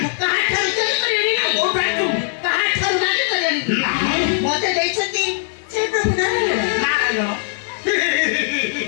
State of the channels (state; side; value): silent; right; 66 dB below the other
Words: कहां ठार चोरी कर जानि ओ बाटू कहां ठार मागे कर जानि मते दैछती श्री प्रभु नारायण